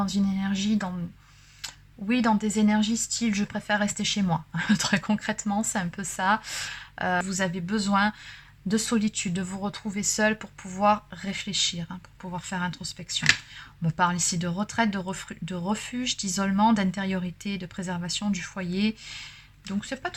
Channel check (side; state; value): both; identical; correlation 1.00